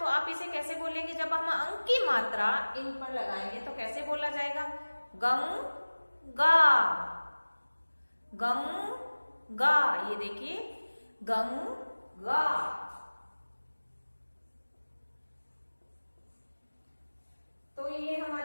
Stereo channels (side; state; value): both; inverted; correlation -1.00